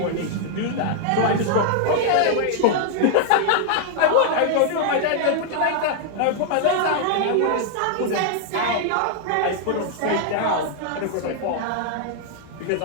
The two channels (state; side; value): different; both; correlation 0.00